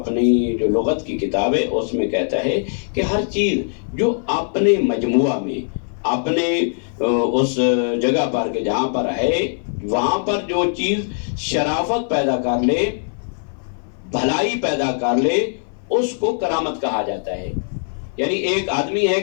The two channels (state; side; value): silent; right; 58 dB below the other